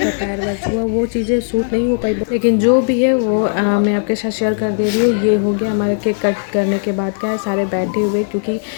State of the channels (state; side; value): silent; right; digital silence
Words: पैर वैर छुआ, वो चीज़ें सूट नहीं हो पाई, लेकिन जो भी है वो मैं आपके साथ शेयर कर दे रही हूँ। ये हो गया हमारे केक कट करने के बाद, क्या है सारे बैठे हुए, क्योंकि